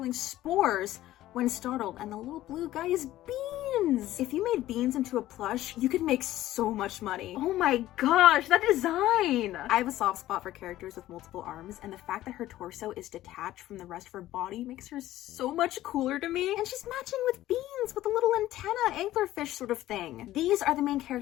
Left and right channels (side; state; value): right; quieter; 14.7 dB